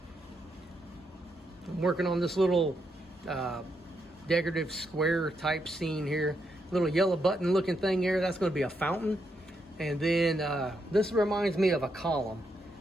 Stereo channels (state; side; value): normal; both; correlation 0.80